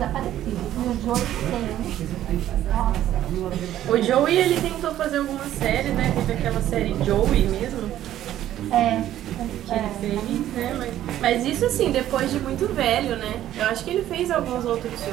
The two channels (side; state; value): left; quieter; 12.5 dB